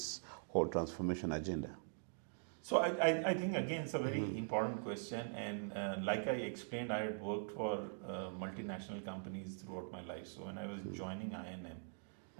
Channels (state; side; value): silent; left; digital silence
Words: whole transformation agenda? So I think, again, it's a very important question. And like I explained, I had worked for multinational companies throughout my life. So when I was joining I&M,